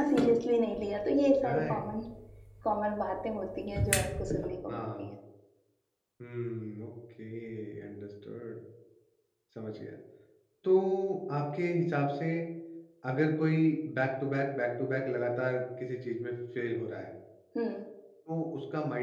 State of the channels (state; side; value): identical; both; correlation 1.00